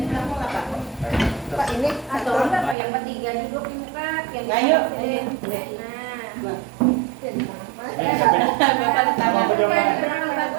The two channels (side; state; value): left; drops out; at 2.8 s